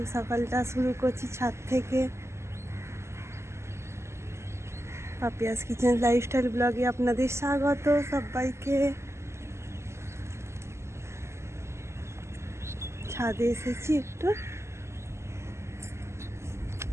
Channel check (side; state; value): left; late; 0.13 ms